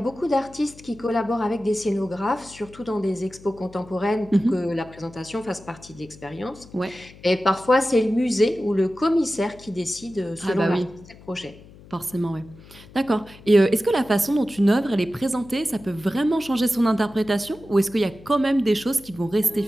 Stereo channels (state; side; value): noise; left; hum, 21 dB below the sound